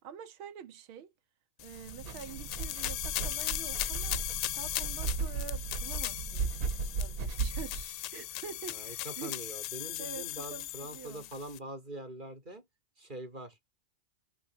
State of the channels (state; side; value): late; left; 1.8 ms